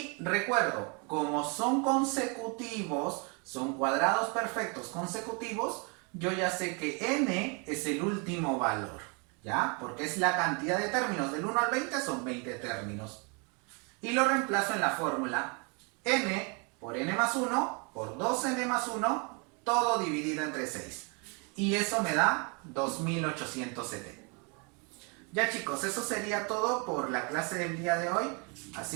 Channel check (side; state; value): left; quieter; 33.5 dB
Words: recuerdo, como son consecutivos, son cuadrados perfectos consecutivos, yo ya sé que n es el último valor, ¿ya? Porque es la cantidad de términos, del 1 al 20 son 20 términos. Y lo reemplazo en la fórmula n por n más 1 por 2n más 1, todo dividido entre 6. Y eso me da 2870. Ya chicos, eso sería todo por la clase del día de hoy.